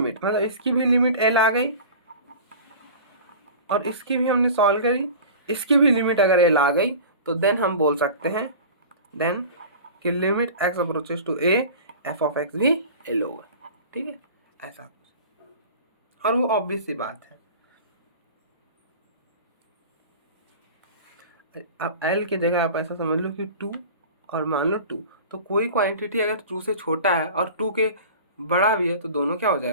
मतलब इसकी भी लिमिट एल आ गई और इसकी भी हमने सॉल्व करी, इसकी भी लिमिट अगर एल आ गई तो देन हम बोल सकते हैं देन कि limit x approaches to a f of x भी एल होगा। ठीक है, ऐसा और वो ऑब्वियस सी बात है। अब एल की जगह आप ऐसा समझ लो कि 2 और मान लो 2, तो कोई क्वांटिटी अगर 2 से छोटा है और 2 के बड़ा भी है तो दोनों क्या हो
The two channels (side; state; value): both; inverted; correlation -0.38